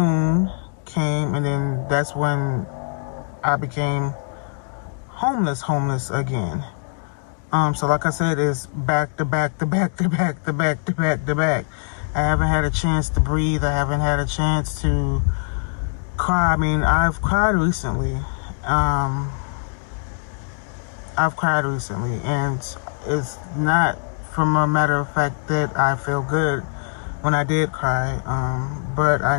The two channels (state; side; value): silent; right; digital silence